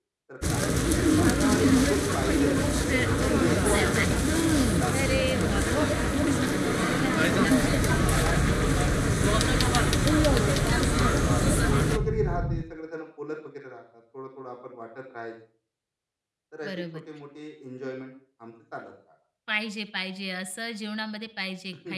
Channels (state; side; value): identical; both; correlation 1.00